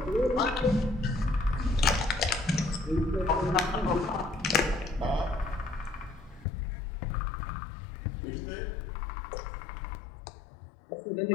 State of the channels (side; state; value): right; drops out; at 6.5 s